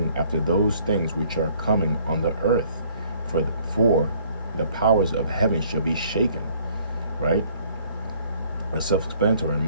after those things which are coming on the earth. For the powers of heaven shall be shaken. Right? That's self-explanatory. And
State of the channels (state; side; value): inverted; both; correlation -0.60